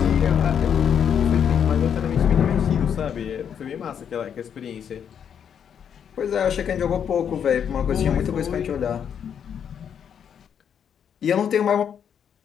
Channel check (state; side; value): quieter; right; 8.1 dB